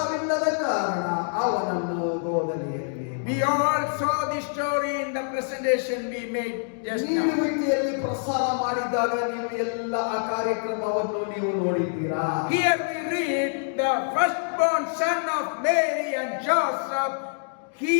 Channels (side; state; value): right; silent; digital silence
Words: ಕಾರಣ ಅವನನ್ನು ಗೋದಲಿಯಲ್ಲಿ. We all saw this story in the presentation we made just now. ನೀಡುವಿಕೆಯಲ್ಲಿ ಪ್ರಸಾರ ಮಾಡಿದಾಗ ನೀವು ಎಲ್ಲ ಆ ಕಾರ್ಯಕ್ರಮವನ್ನು ನೀವು ನೋಡಿದ್ದೀರಾ. Here we read the firstborn son of Mary and Joseph. He